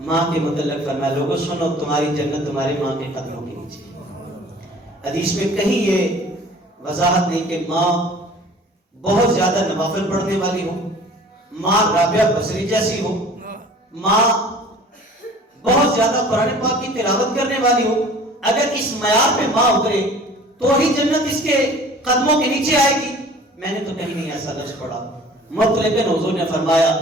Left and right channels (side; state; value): both; normal; correlation 0.47